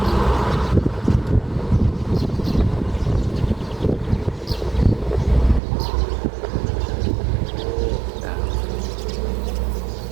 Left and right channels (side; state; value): left; drops out; at 5.6 s